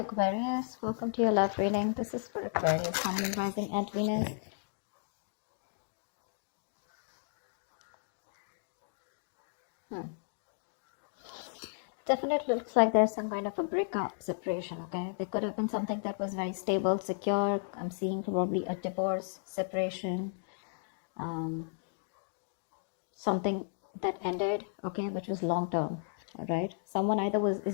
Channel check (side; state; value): right; silent; digital silence